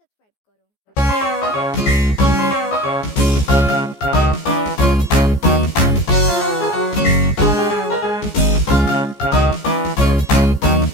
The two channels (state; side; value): late; right; 14 ms